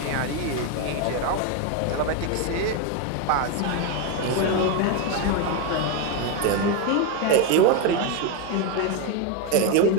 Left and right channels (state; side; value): different; both; correlation 0.02